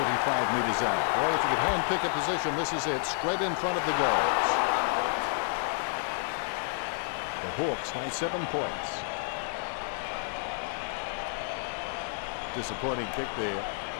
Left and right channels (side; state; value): right; silent; digital silence